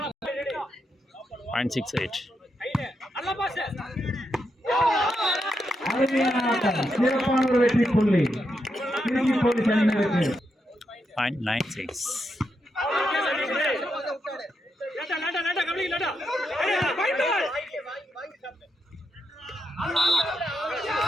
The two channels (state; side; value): normal; both; correlation 0.83